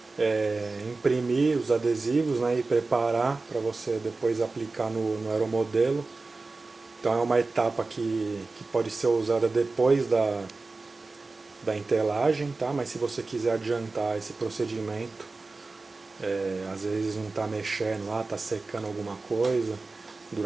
imprimir os adesivos, né, e preparar para você depois aplicar no aeromodelo. Então é uma etapa que pode ser usada depois da entelagem, tá? Mas se você quiser adiantar esse procedimento, às vezes não está mexendo lá, está secando alguma coisa,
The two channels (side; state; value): left; quieter; 3.6 dB